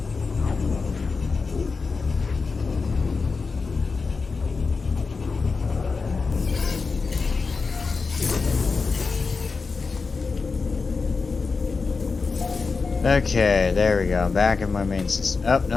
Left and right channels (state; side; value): quieter; right; 4.5 dB